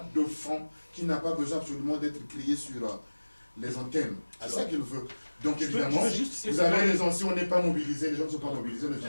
de fond, qui n'a pas besoin absolument d'être créé sur les antennes. C'est ça qu'il veut. Donc évidemment, vous avez raison, si on n'est pas mobilisé, les gens ne sont pas mobilisés, ne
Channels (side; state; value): both; inverted; correlation -1.00